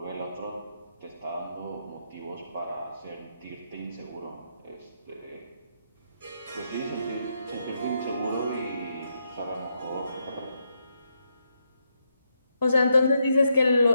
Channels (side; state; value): both; inverted; correlation -0.81